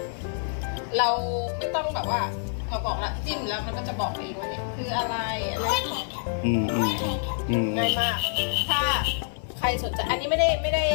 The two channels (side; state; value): right; silent; digital silence